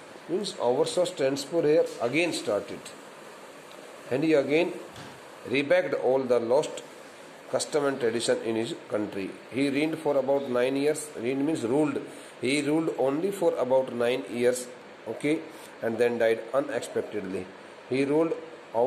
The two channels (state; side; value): identical; both; correlation 1.00